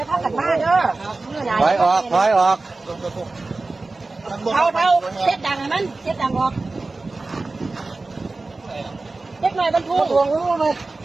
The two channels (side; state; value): left; quieter; 3.4 dB